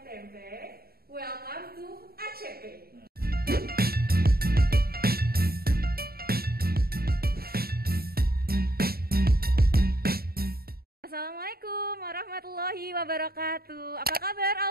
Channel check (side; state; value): left; late; 0.44 ms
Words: tempe. Welcome to ACP. Assalamualaikum warahmatullahi wabarakatuh. Apa kabar